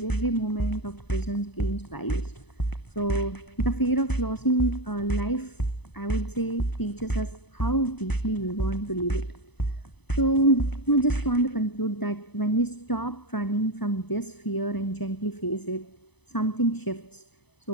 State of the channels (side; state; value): right; late; 0.99 ms